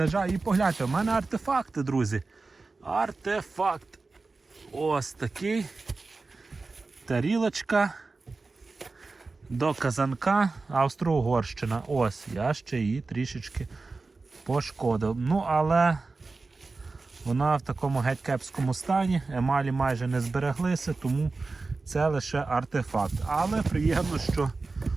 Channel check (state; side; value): quieter; left; 3.8 dB